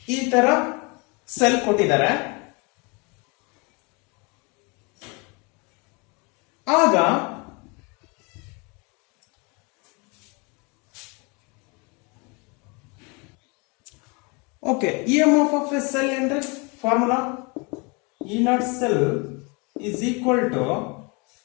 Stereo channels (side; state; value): right; quieter; 30.2 dB